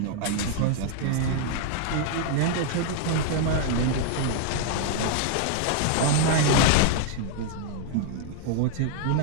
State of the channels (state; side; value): different; both; correlation 0.00